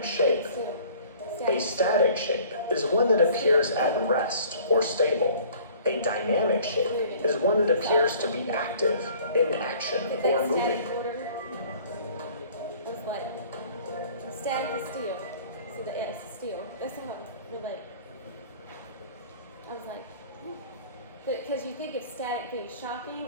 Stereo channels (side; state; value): both; inverted; correlation -0.51